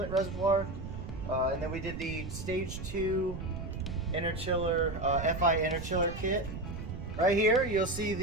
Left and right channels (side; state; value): right; noise; rumble, 8 dB below the sound